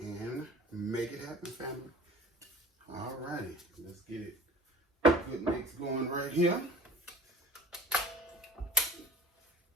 and make it happen, family. All righty, let's get it. Good mix going right here. There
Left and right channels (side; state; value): both; normal; correlation 0.44